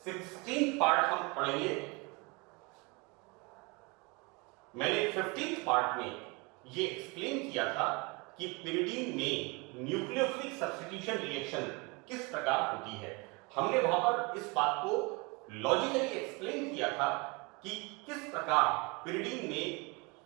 16th पार्ट हम पढ़ेंगे, मैंने 15th पार्ट में ये एक्सप्लेन किया था कि pyridine में न्यूक्लियोफिलिक सब्स्टिट्यूशन रिएक्शन किस प्रकार होती है। हमने वहां पर इस बात को लॉजिकली एक्सप्लेन किया था कि किस प्रकार pyridine में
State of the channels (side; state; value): left; quieter; 28.1 dB